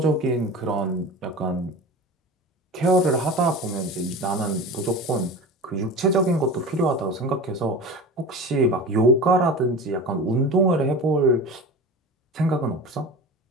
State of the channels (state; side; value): normal; both; correlation 0.32